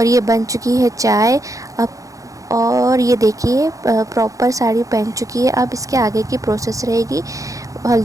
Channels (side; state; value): left; late; 0.16 ms